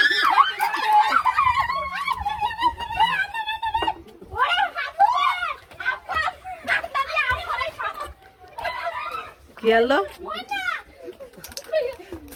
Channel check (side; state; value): both; identical; correlation 1.00